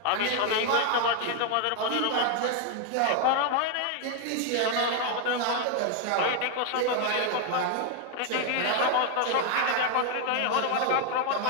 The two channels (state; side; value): different; both; correlation 0.01